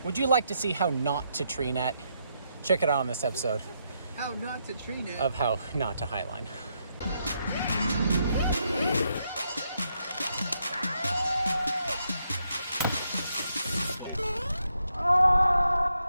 Would you like to see how not to tree net? Check it out on this episode How not to tree net. of how not to highline.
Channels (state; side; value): inverted; both; correlation -0.79